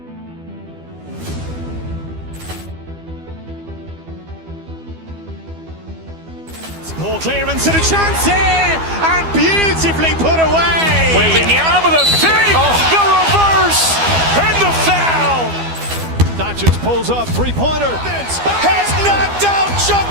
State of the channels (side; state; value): left; late; 12 ms